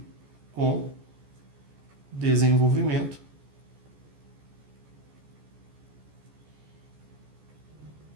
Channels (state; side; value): late; left; 14 ms